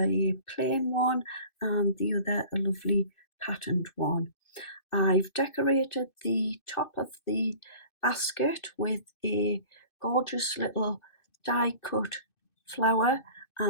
plain one and the other a lovely patterned one. I've decorated the top of the basket with a gorgeous little die cut flower,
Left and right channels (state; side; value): late; right; 2.6 ms